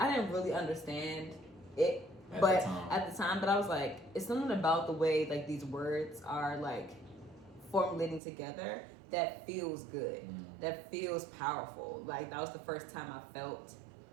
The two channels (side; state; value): left; drops out; at 8.2 s